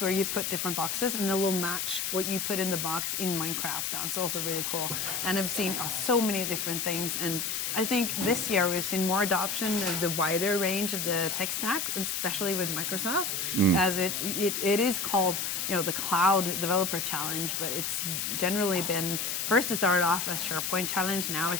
where you put different boxes, and they'll match what you put in the box in Minecraft. That's also really cool. And I've seen so many different things, and I think this year we've seen more adoption of the wider range of the tech stack, especially with Microsoft, as it is called the Cloud Developer Challenge, but it's generally been, first it started off as SharePoint Challenge, now it's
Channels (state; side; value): noise; left; hiss, 1 dB below the sound